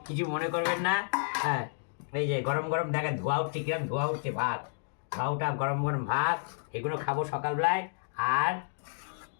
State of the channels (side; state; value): right; silent; digital silence